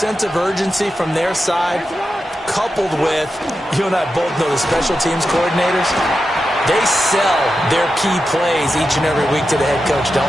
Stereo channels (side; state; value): both; normal; correlation 0.90